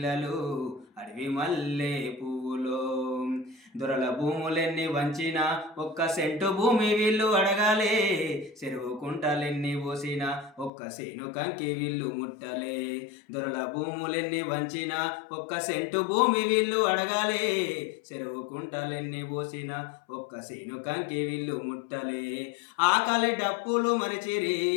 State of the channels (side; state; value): right; drops out; at 10.7 s